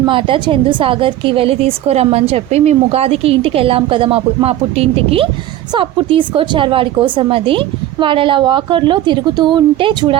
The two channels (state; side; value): quieter; left; 13.4 dB